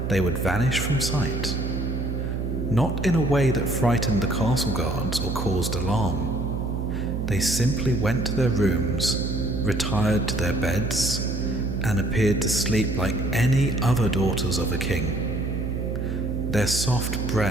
they would vanish from sight. Not in a way that frightened the castle guards or caused alarm. They simply went to their rooms, retired to their beds, and appeared to sleep like any other daughters of a king. Their soft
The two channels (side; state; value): right; noise; hum, 2 dB below the sound